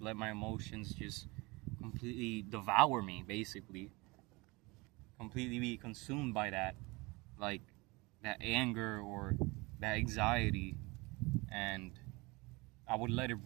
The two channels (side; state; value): left; quieter; 24.9 dB